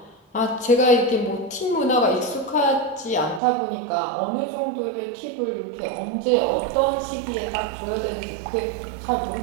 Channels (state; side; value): drops out; left; at 3.4 s